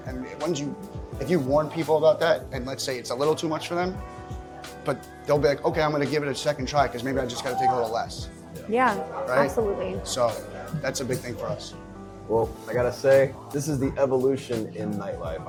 And if you warn people about that, and let's say it's a little too much for them, but they'll be like, okay, I'm going to give it a second try because maybe I just got to take a little less. Yeah, right? Absolutely. So that's a big thing for us. Well, I gotta say, this is the evolution in nightlife.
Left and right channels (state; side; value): identical; both; correlation 1.00